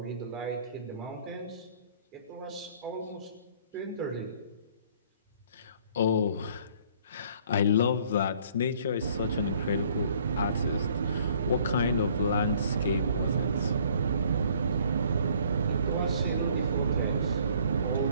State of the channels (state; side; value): inverted; both; correlation -0.58